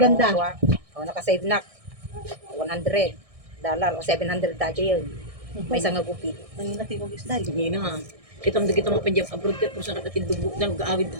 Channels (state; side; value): late; left; 1.6 ms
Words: O, nakasave na. $100 o $700 dati yun. May isang nagupit. Ang natin kong isda. Hindi na. Kita mo dito mapandyan abroad ka kung saan nakatindugbo ng gaawid.